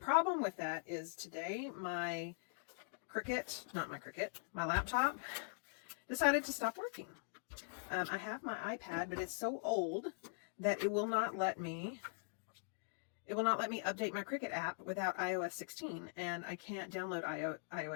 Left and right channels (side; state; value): right; silent; digital silence